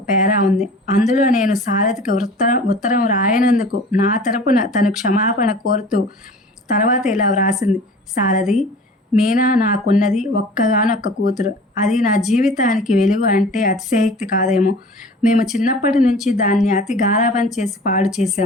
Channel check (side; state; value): both; normal; correlation 0.43